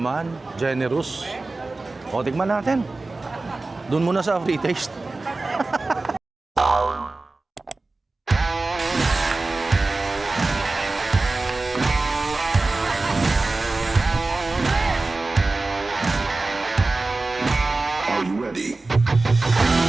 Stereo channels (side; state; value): left; quieter; 3.3 dB